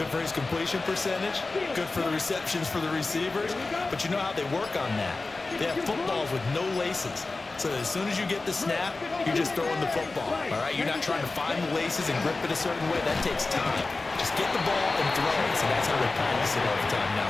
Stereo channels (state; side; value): quieter; right; 3.5 dB